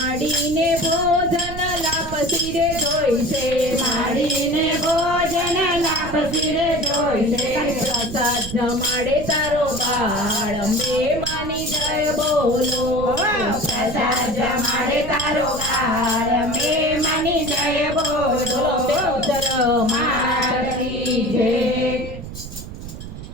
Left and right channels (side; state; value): right; noise; rumble, 11 dB below the sound